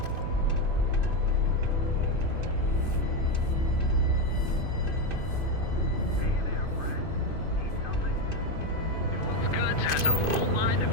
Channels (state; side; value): late; right; 2.5 ms